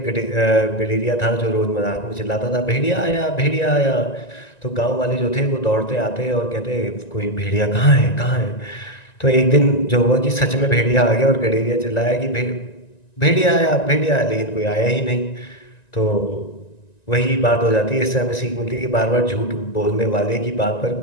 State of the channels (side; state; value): right; late; 1.9 ms